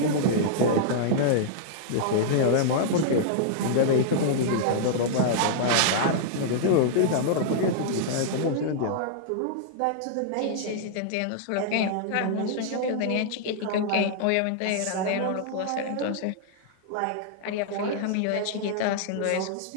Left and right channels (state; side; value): different; both; correlation -0.01